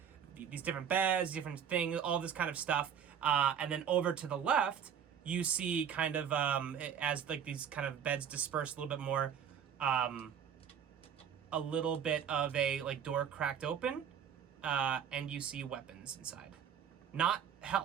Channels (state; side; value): quieter; left; 8.2 dB